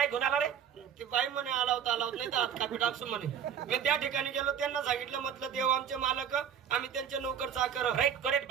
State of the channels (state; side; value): quieter; left; 8.4 dB